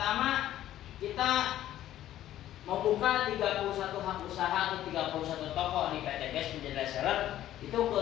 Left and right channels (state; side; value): quieter; right; 12.9 dB